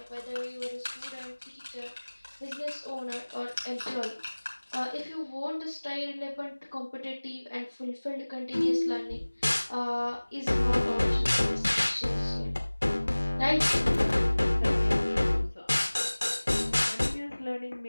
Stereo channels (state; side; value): inverted; both; correlation -1.00